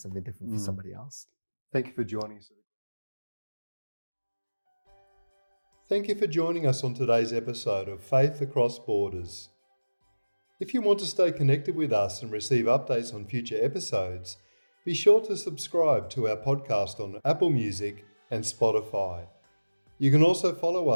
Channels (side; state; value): both; inverted; correlation -1.00